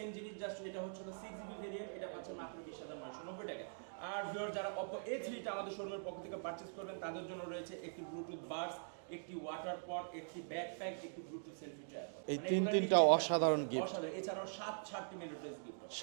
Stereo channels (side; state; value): left; silent; digital silence